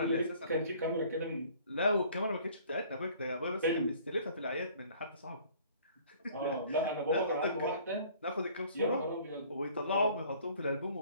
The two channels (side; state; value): both; inverted; correlation -0.54